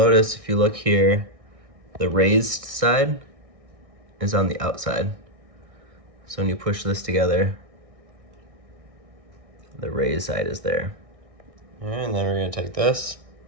if you look here, the raised side is on the outside. So when you push this together, the raised side is there. All right, and then we're going to take this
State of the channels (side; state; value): left; late; 1.6 ms